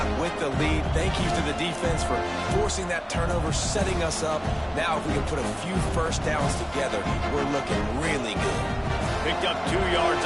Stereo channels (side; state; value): both; identical; correlation 1.00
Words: with the lead. Thank you to the defense for forcing that turnover, setting us up. Now if we can put a few first downs together, we're looking really good. Picked up 2 yards